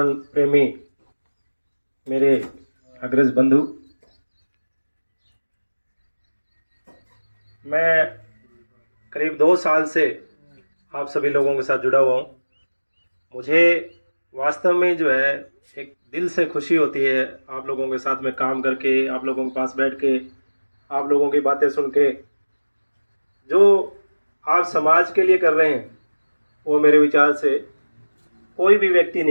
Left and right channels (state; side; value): inverted; both; correlation -1.00